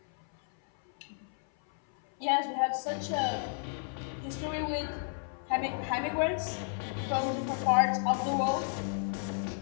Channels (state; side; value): silent; right; 56 dB below the other